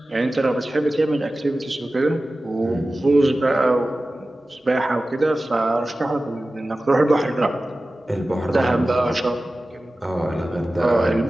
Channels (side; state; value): both; normal; correlation 0.96